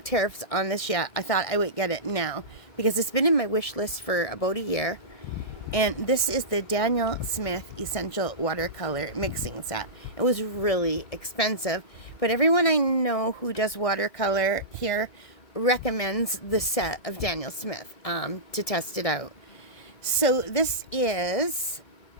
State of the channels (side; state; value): right; late; 1.9 ms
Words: tariffs on this yet, I thought I would get it now, because it's been in my wish list for about a year. And this is the Daniel Smith Essential Watercolor Mixing Set. It was really expensive, but everyone I know who does watercolor here recommends the set of Daniel Smith to test it out. So this is